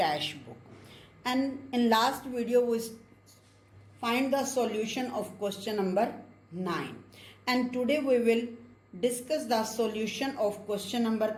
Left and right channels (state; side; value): identical; both; correlation 1.00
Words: book, and in last video we find the solution of question number 9, and today we will discuss the solution of question number